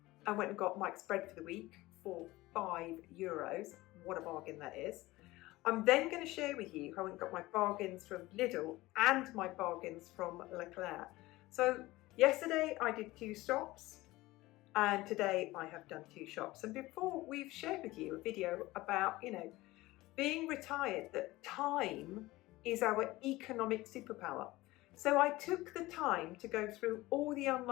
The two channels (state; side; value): quieter; right; 19.0 dB